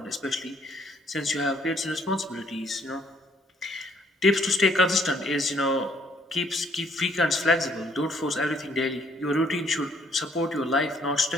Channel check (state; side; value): normal; both; correlation 0.64